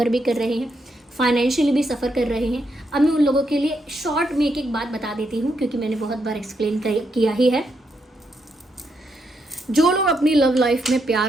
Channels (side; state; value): both; normal; correlation 0.80